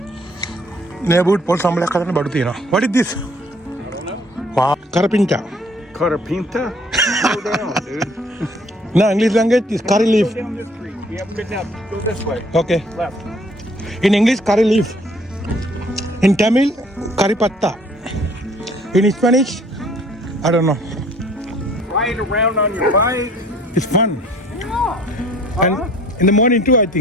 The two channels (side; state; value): both; normal; correlation 0.57